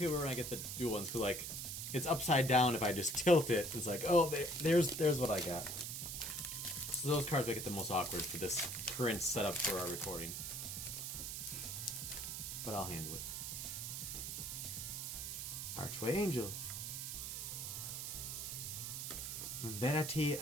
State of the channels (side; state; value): right; noise; hiss, 5 dB below the sound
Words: weird when I get the dual ones, because like, it's upside down if I just tilt it. It's like, oh, there's what I got. So those cards make it the most awkward for this current setup for our recording. But I'll handle it. Archway Angel. Vanity